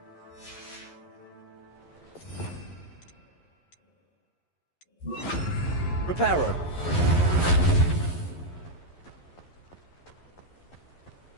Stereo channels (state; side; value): late; right; 11 ms